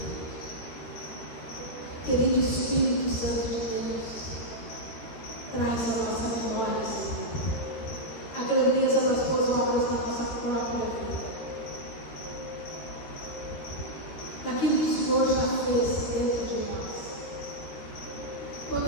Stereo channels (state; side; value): late; right; 13 ms